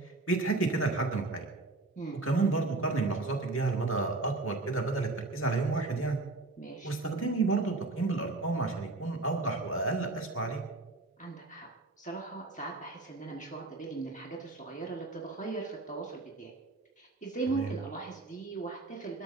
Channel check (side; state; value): left; quieter; 3.2 dB